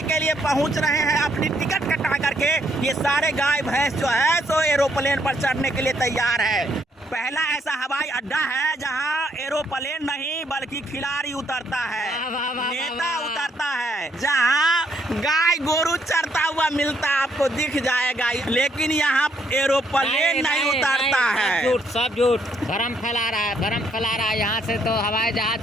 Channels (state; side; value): normal; both; correlation 0.71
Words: के लिए पहुंच रहे हैं अपनी टिकट कटा करके। ये सारे गाय भैंस जो है सो एरोप्लेन पर चढ़ने के लिए तैयार है। पहला ऐसा हवाई अड्डा है जहां एरोप्लेन नहीं बल्कि खिलाड़ी उतरता है, नेता उतरता है, जहां गाय गोरू चरता हुआ मिलता आपको दिख जाएगा, लेकिन यहाँ एरोप्लेन नहीं उतरता है। सब झूठ भरम फैला रहा है। यहाँ से तो हवाई